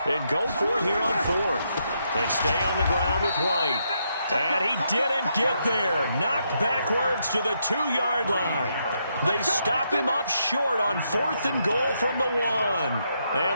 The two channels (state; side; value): inverted; both; correlation -0.79